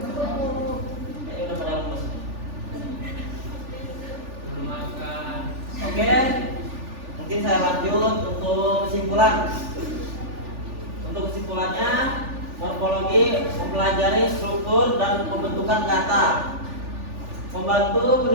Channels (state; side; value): late; left; 3.4 ms